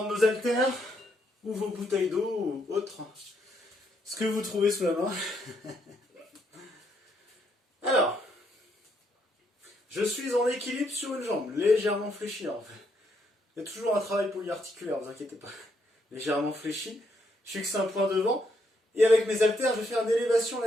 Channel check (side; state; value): both; normal; correlation 0.75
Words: nos haltères ou vos bouteilles d'eau ou autre, ce que vous trouvez sous la main. Alors, je suis en équilibre sur une jambe, légèrement fléchie en fait. Il y a toujours un travail polyarticulaire, ne vous inquiétez pas. Légèrement fléchi, je fixe un point devant, et avec mes haltères, je vais faire une élévation